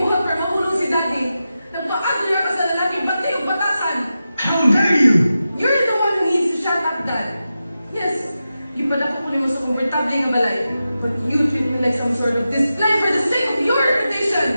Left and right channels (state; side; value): inverted; both; correlation -0.91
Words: para mahulog si Daddy. Nagpa-agler ka sa lalaking bantay o batasan. How dare you? You're the one who needs to shut up, Dad. Yes, you pala ko mo sa komportable nga balay. But you treat me like some sort of display for the sake of your